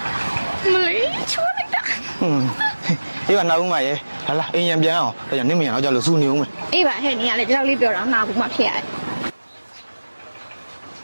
မလေးချိုးလိုက်တာအေးပါနောက်ဦးမရေလာလာအိမ်ရံပြန်အောင်ဒါကြောင့်နင်းမရတော့ကြလို့စူနေဦးမယ်အေးပါဟဲ့နင်ကလည်းဒီလောက်လေးပြောတာနာဘူးမှဖြစ်ရတယ်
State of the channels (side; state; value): both; inverted; correlation -1.00